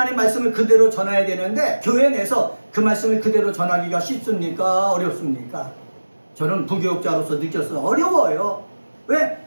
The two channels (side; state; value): both; inverted; correlation -1.00